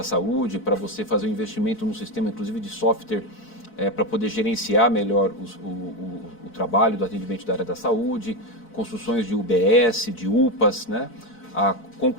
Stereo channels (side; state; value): right; late; 4.6 ms